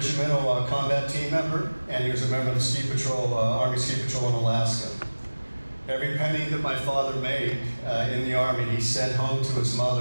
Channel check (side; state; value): both; inverted; correlation -1.00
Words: combat team member, and he was a member of the Ski Patrol, Army Ski Patrol in Alaska. Every penny that my father made in the Army, he sent home to his